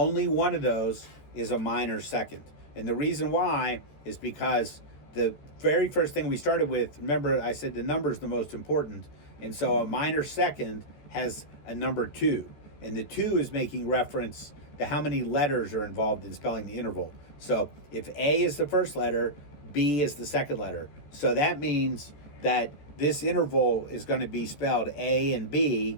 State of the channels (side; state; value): right; late; 14 ms